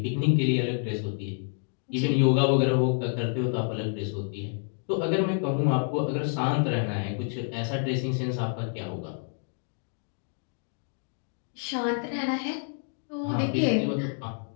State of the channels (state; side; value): silent; right; 55 dB below the other